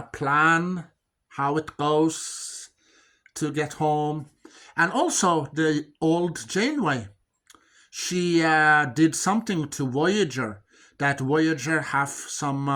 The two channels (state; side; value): identical; both; correlation 1.00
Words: plan, how it goes to get home. And also the old Janeway, she did something to Voyager, that Voyager have